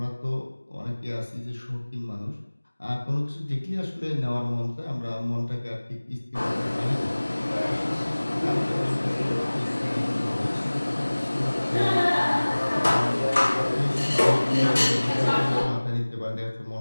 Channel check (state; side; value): inverted; both; correlation -1.00